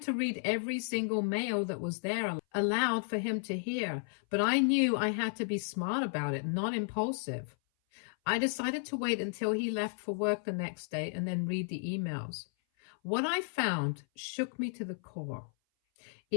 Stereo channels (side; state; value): right; silent; 55 dB below the other